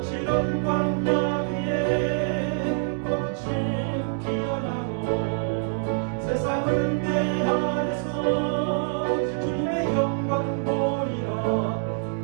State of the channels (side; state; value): left; silent; 61 dB below the other